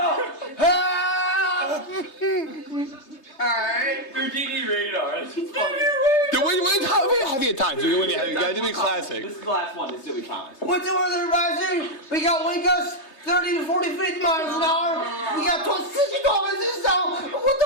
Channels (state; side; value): late; right; 3.3 ms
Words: Alright. Houdini radar. That's funny. How many times? You gotta do me classic. This is the last one. This is what we promised. What's the weather advisory? We got wind gusts 30 to 40 miles an hour. We got 60 kilometers an hour. What the